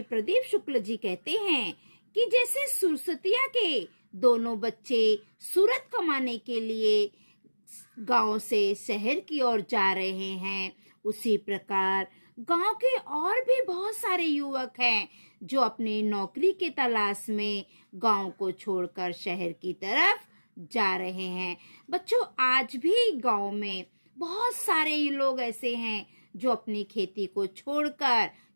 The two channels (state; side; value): inverted; both; correlation -1.00